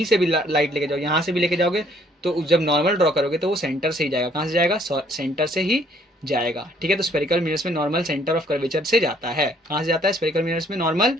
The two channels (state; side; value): normal; both; correlation 0.63